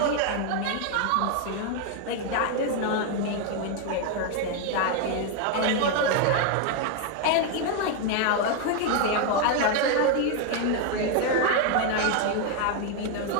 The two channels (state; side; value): different; both; correlation 0.01